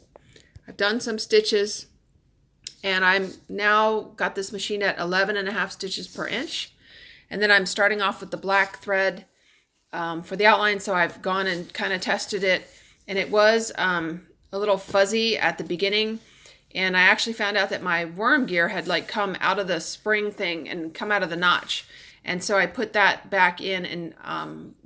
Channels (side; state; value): both; identical; correlation 1.00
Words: done some stitches, and I'm now got this machine at 11.5 stitches per inch. And then I'm starting off with the black thread for the outline, so I've gone and kind of tested it. And it was a little fuzzy at the beginning, and I actually found out that my worm gear had like come out of the spring thing and come out of the notch, and so I put that back in, and